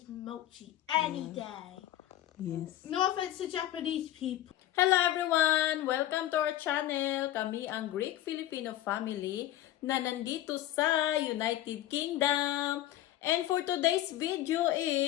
mochi any day. Yes. No offense to Japanese people. Hello everyone! Welcome to our channel. Kami ang Greek Filipino family na nandito sa United Kingdom. And for today's video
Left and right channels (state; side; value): quieter; right; 13.7 dB